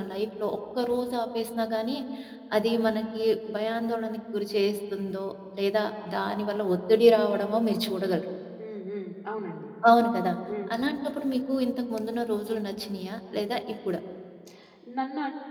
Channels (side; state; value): both; identical; correlation 1.00